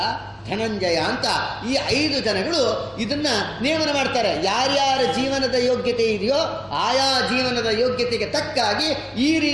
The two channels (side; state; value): both; identical; correlation 1.00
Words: ಧನಂಜಯ ಅಂತ ಈ 5 ಜನಗಳು ಇದನ್ನ ನೇಮನ ಮಾಡ್ತಾರೆ. ಯಾರ್ಯಾರ ಜೀವನದ ಯೋಗ್ಯತೆ ಇದೆಯೋ ಆಯಾ ಜೀವನದ ಯೋಗ್ಯತೆಗೆ ತಕ್ಕಾಗಿ ಈ